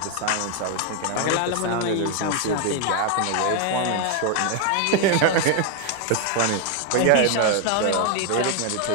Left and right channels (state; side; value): different; both; correlation 0.01